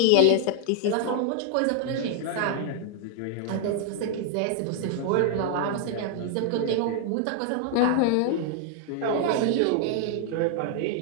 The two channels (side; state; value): both; different; correlation 0.00